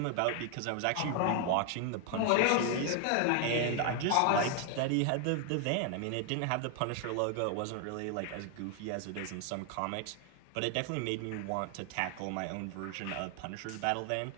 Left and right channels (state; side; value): different; both; correlation 0.00